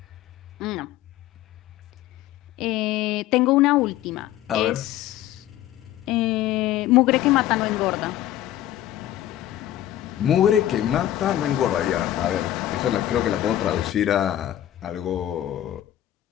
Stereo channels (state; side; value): quieter; right; 12.9 dB